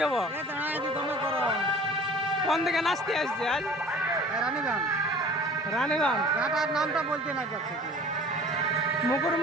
কোন দিকে নাচতে আসছে আজ? রানীগঞ্জ নামটা বলতে না যাচ্ছে।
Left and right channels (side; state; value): both; normal; correlation 0.45